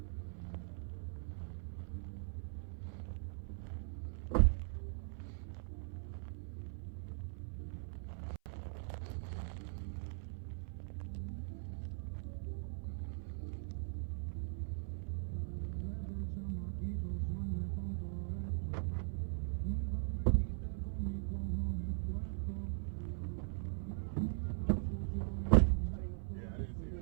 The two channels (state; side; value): silent; left; 51 dB below the other